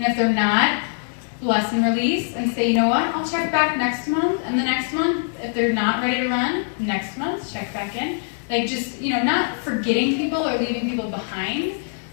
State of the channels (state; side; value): silent; right; digital silence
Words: if they're not, bless and release and say, you know what, I'll check back next month, and the next month, if they're not ready to run, next month, check back in. Not forgetting people or leaving people behind,